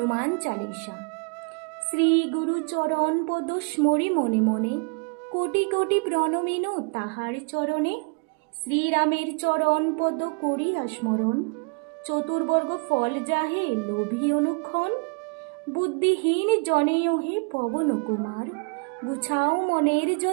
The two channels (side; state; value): left; quieter; 34.1 dB